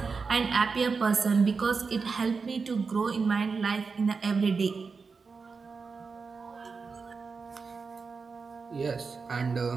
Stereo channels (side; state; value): left; quieter; 4.9 dB